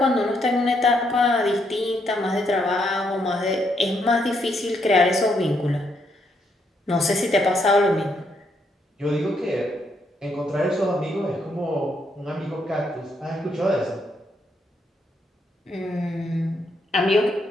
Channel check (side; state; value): both; normal; correlation 0.76